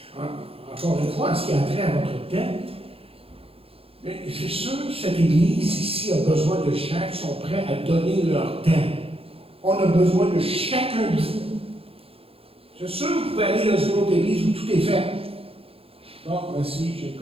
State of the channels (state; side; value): late; left; 0.27 ms